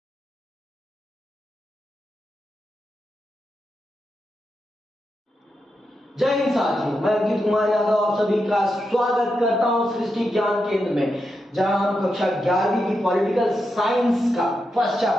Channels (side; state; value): both; normal; correlation 0.86